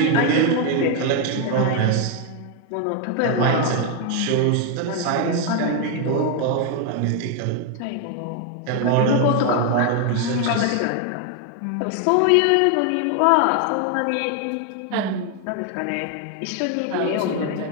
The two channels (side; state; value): both; different; correlation 0.01